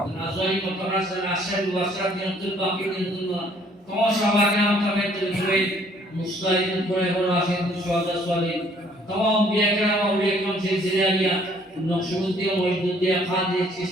নাজারি মতরাসের আশার ওয়াসরাত দিনাতুল বাকি দিনাতুল্লাহ তোমার সবাইকে নাম তামে তুলে মুস্তাহিদ করে হলো আসেন সুহাদা সালিন तमाम बिया करम और एकम से जिरिया नक्शबंदी और मौजूदी खादी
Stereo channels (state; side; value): normal; both; correlation 0.61